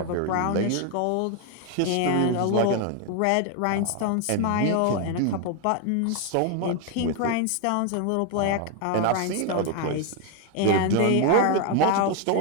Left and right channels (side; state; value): both; different; correlation 0.01